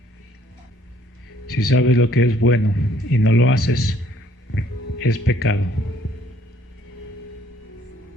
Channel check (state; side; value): normal; both; correlation 0.63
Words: Si sabes lo que es bueno y no lo haces, es pecado.